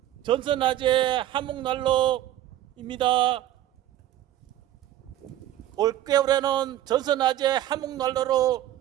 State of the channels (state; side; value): quieter; left; 12.9 dB